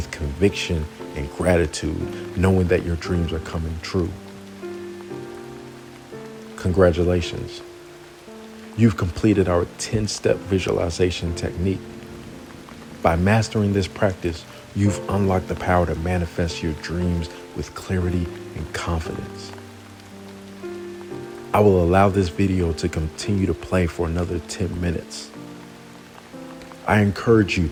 conviction and gratitude, knowing that your dreams are coming true. Congratulations. You've completed our 10-step visualization technique. By mastering this practice, you've unlocked the power to manifest your dreams with clarity and confidence. I will allow this video to continue to play for another 10 minutes. I encourage you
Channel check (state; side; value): identical; both; correlation 1.00